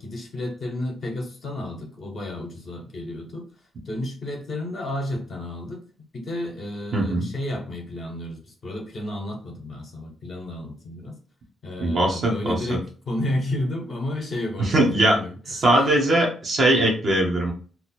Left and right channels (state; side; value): normal; both; correlation 0.73